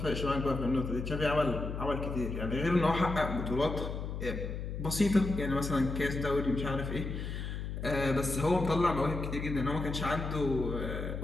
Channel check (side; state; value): left; noise; hum, 5 dB below the sound